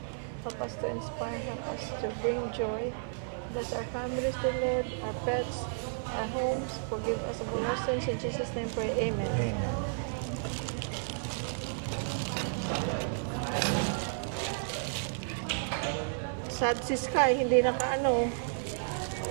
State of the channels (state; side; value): silent; left; 56 dB below the other